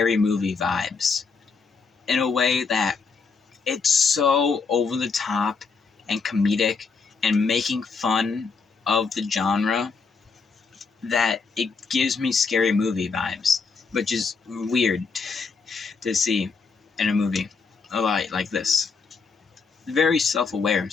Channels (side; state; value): right; quieter; 4.9 dB